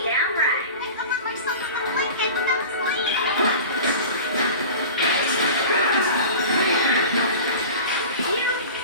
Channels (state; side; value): inverted; both; correlation -0.36